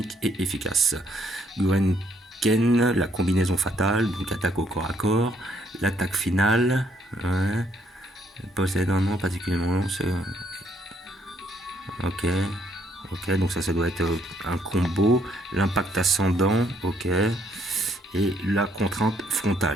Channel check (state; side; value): normal; both; correlation 0.70